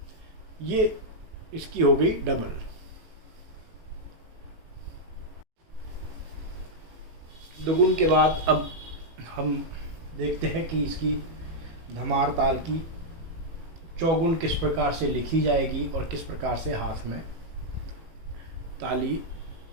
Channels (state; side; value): late; left; 18 ms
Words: ये इसकी हो गई डबल। दुगुन के बाद अब हम देखते हैं कि इसकी धमार ताल की चौगुन किस प्रकार से लिखी जाएगी और किस प्रकार से हाथ में ताली